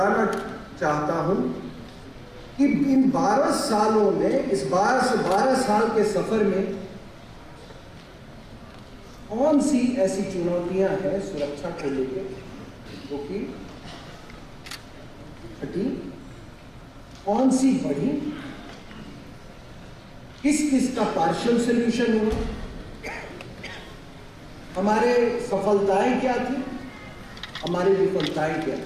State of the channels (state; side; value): identical; both; correlation 1.00